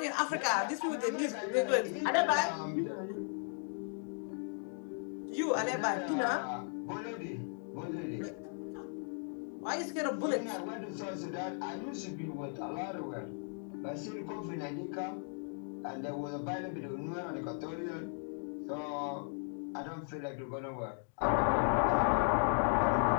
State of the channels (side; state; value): right; silent; 54 dB below the other